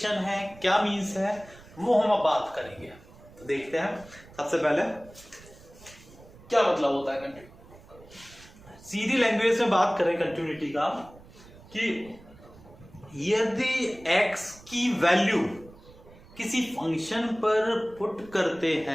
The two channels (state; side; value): noise; right; rumble, 22 dB below the sound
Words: है, क्या मीन्स है, वो हम अब बात करेंगे। तो देखते हैं, सबसे पहले क्या मतलब होता है कंटिन्यूटी। सीधी लैंग्वेज में बात करें कंटिन्यूटी का, कि यदि x की वैल्यू किसी फंक्शन पर पुट करते